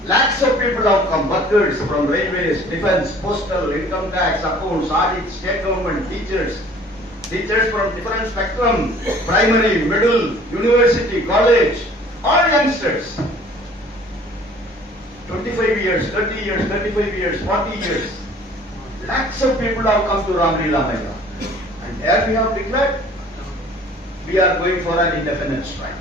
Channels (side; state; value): both; normal; correlation 0.51